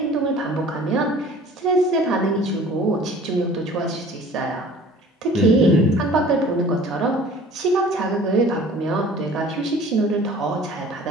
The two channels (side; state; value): both; normal; correlation 0.48